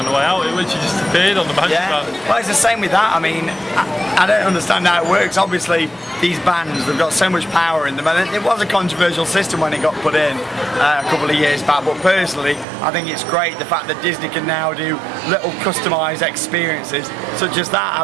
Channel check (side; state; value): left; drops out; at 12.7 s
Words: the way out, it literally just appeared on the magic band. Well, it's the same with that. I mean, I don't understand how it works. Obviously, these bands, they've got so much power in them, and it was a controversial system when it got put in a couple of years back, but personally, I think it's great the fact that Disney can now do little customised experiences, such as that,